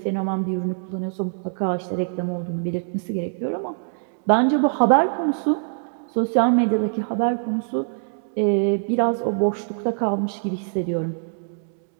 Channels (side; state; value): left; silent; digital silence